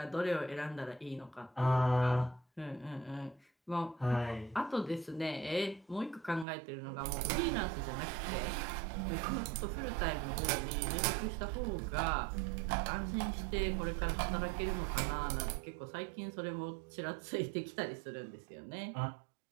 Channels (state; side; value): drops out; left; at 6.5 s